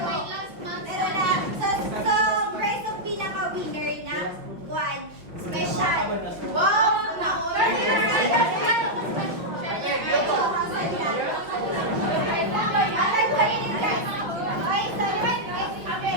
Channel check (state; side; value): late; left; 5.6 ms